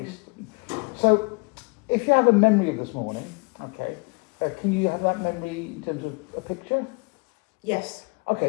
So, if you have a memory of this morning, okay, can you have that memory in terms of a picture? Yes.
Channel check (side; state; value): right; quieter; 31.3 dB